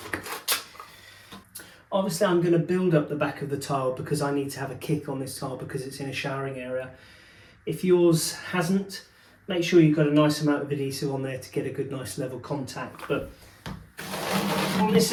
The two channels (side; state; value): both; identical; correlation 1.00